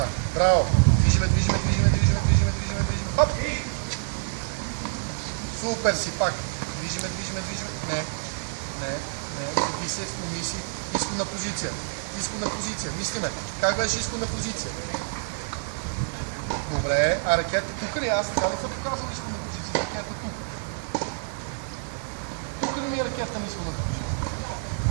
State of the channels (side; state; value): left; silent; digital silence